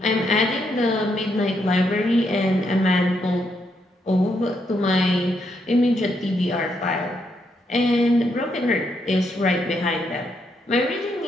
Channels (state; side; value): normal; both; correlation 0.77